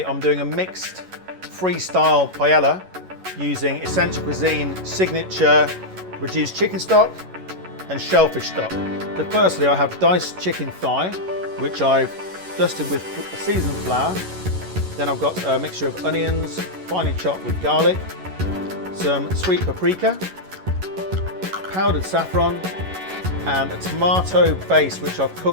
I'm doing a mixed freestyle paella using Essential Cuisine signature reduced chicken stock and shellfish stock. So firstly, I have diced chicken thigh, which I've dusted with seasoned flour. Then I've got a mixture of onions, finely chopped with garlic, some sweet paprika, powdered saffron, and a tomato base which I've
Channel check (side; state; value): left; late; 11 ms